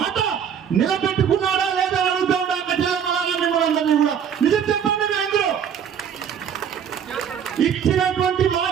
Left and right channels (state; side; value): quieter; left; 8.1 dB